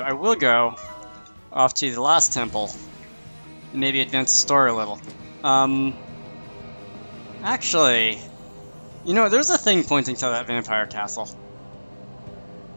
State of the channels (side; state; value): both; inverted; correlation -1.00